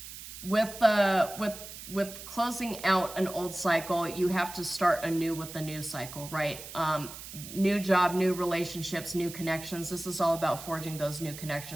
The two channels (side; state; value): right; noise; hiss, 12 dB below the sound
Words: with closing out an old cycle, you have to start anew with the new cycle, right? New job, new relationships, new connections. This is all about forging those new